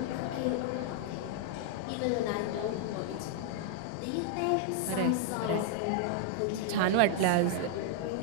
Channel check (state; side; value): different; both; correlation 0.00